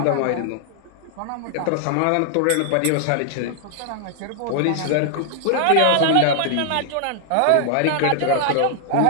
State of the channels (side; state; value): both; different; correlation 0.00